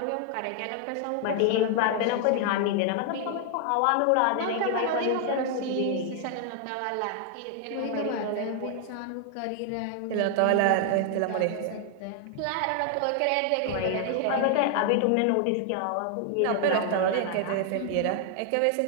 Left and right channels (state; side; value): different; both; correlation 0.00